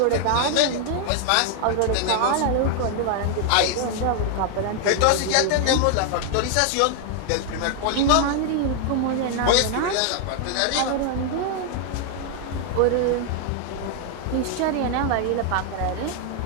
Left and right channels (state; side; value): different; both; correlation 0.00